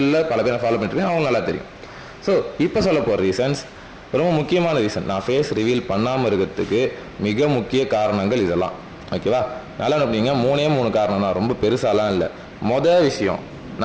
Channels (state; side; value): identical; both; correlation 1.00